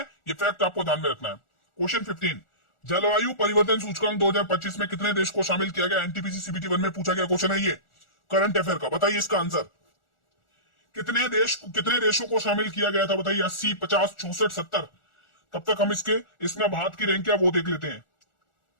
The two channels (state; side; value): late; right; 1.4 ms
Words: ये फैक्ट आपको ध्यान में रखना है। क्वेश्चन 15, जलवायु परिवर्तन सूचकांक 2025 में कितने देश को शामिल किया गया? एनटीपीसी सीबीटी 1 में पूछा गया क्वेश्चन है ये, करंट अफेयर का, बताइए इसका आंसर। कितने देशों को शामिल किया गया था बताइए? 80, 50, 64, 70। तब तक हम इसमें भारत की रैंक क्या वो देख लेते हैं।